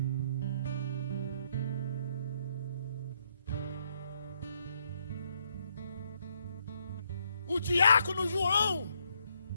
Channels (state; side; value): inverted; both; correlation -0.73